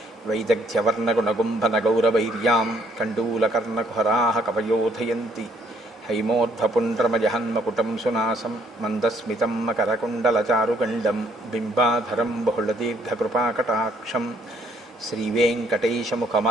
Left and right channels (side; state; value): both; normal; correlation 0.66